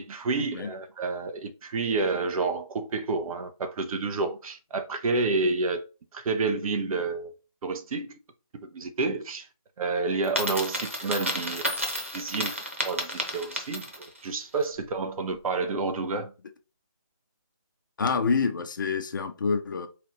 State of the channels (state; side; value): inverted; both; correlation -0.36